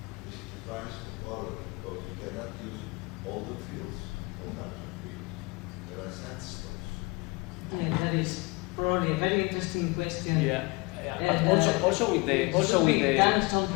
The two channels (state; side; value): quieter; right; 26.1 dB